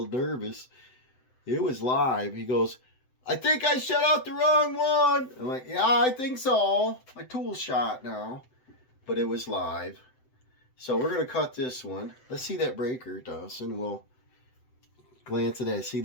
nervous. It was live. He goes, I think I shut off the wrong one. I'm like, yeah, I think so. My tool's shot now. But it was live. So we're going to cut this one. Let's see that breaker, Dawson. We'll glance at that. See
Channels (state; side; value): late; right; 7.8 ms